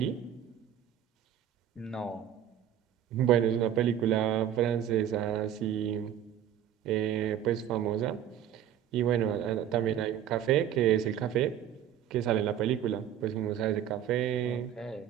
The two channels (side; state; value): left; quieter; 10.2 dB